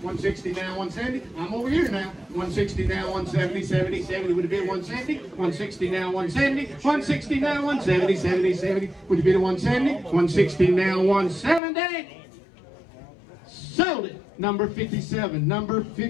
160 now, 170. I'm over here now. 160 now, 170 would have been 170. 160 now, 170. 160 now, 170 would have been 170. 160 now, 170. Sold it. Number 57. Number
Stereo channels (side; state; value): right; drops out; at 11.6 s